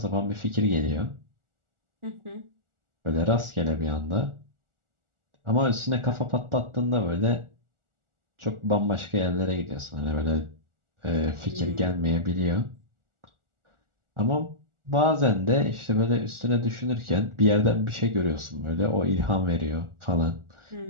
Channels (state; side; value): late; left; 1.4 ms